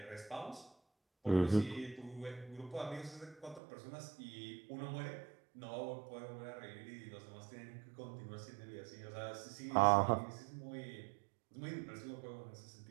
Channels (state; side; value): drops out; left; at 3.6 s